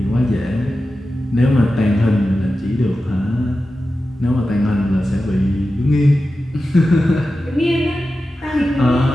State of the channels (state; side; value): normal; both; correlation 0.93